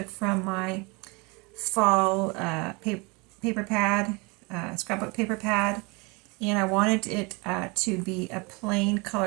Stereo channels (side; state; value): left; quieter; 28.4 dB